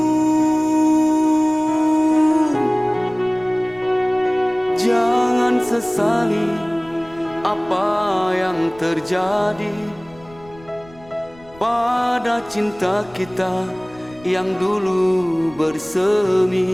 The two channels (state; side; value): noise; left; rumble, 24 dB below the sound